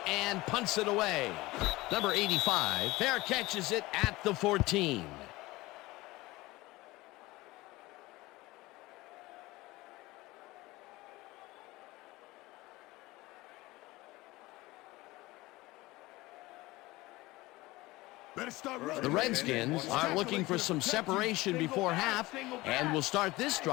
and punts it away. Number 85, fair catches it at the 14. The Redskins are looking for some separation before half and will start this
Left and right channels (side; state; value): right; quieter; 20.0 dB